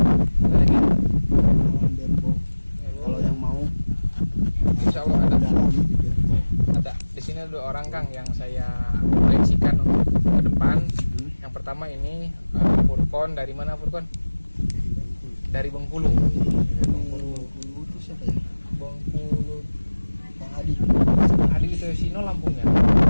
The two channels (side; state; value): both; inverted; correlation -1.00